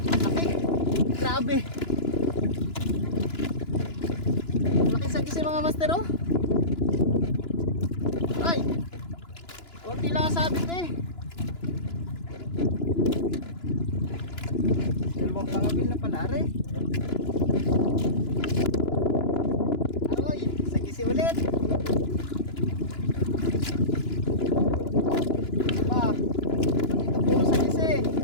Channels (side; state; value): right; late; 2.9 ms